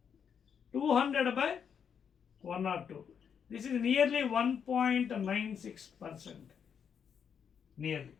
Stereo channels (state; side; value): quieter; right; 7.4 dB